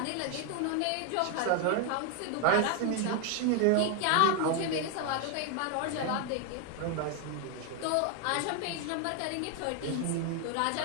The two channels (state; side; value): different; both; correlation 0.01